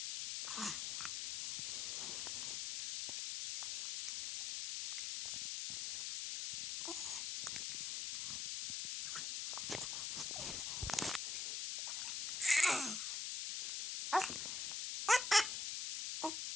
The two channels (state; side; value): noise; left; hiss, 2 dB below the sound